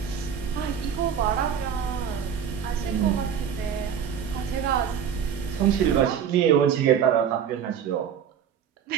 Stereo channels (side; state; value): left; quieter; 8.0 dB